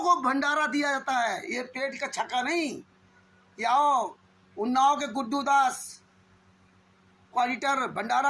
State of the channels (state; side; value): identical; both; correlation 1.00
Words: को भंडारा दिया जाता है, ये पेट का छक्का नहीं। आओ उन्नाव के गुड्डू दास क्वालिटर